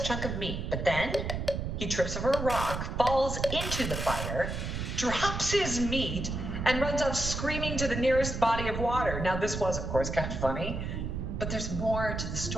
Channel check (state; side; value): noise; right; rumble, 4 dB below the sound